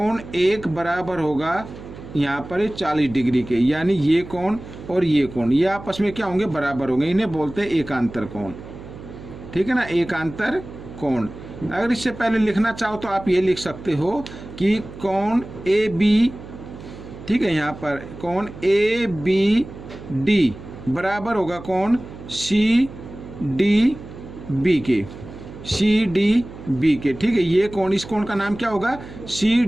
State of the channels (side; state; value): right; noise; hum, 15 dB below the sound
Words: 1 बराबर होगा यहाँ पर 40 डिग्री के, यानी ये कोण और ये कोण ये आपस में क्या होंगे, बराबर होंगे। इन्हें बोलते हैं एकांतर कोण। ठीक है ना, एकांतर कोण। अगर इससे पहले लिखना चाहो तो आप ये लिख सकते हो कि कोण AB, ठीक है, यहाँ पर कोण ABD बराबर होगा कोण CDB के, CDB के। ठीक है, ये कोण, इस कोण का नाम क्या होगा,